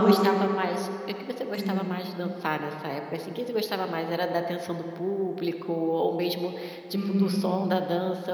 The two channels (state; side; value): identical; both; correlation 1.00